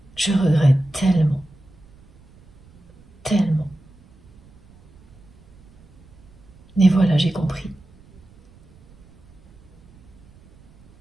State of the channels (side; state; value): right; noise; rumble, 27 dB below the sound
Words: Je regrette tellement, tellement. Mais voilà, j'ai compris.